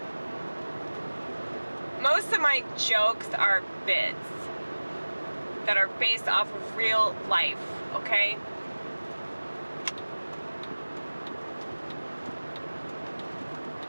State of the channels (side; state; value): both; inverted; correlation -1.00